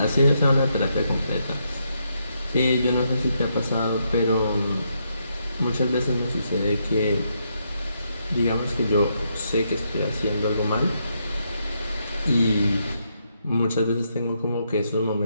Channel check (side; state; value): both; inverted; correlation -0.78